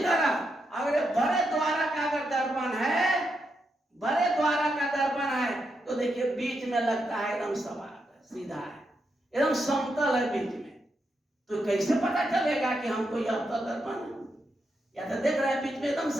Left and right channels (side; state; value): both; normal; correlation 0.83